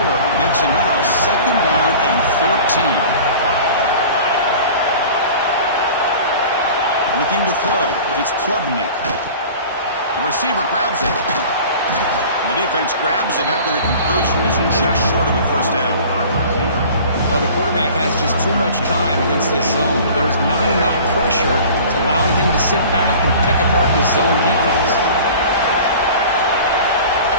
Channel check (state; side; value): inverted; both; correlation -0.42